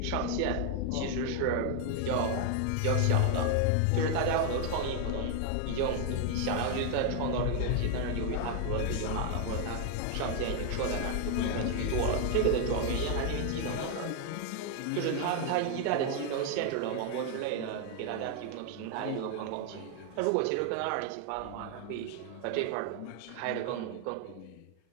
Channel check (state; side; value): different; both; correlation 0.00